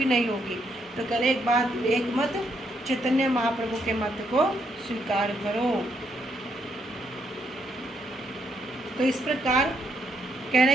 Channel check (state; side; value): normal; both; correlation 0.75